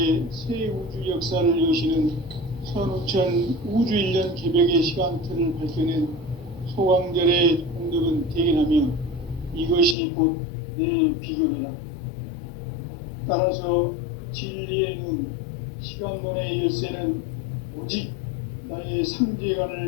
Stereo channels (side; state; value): right; drops out; at 10.0 s